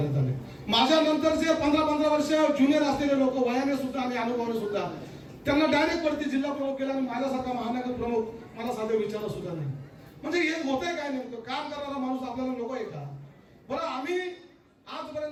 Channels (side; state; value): both; identical; correlation 1.00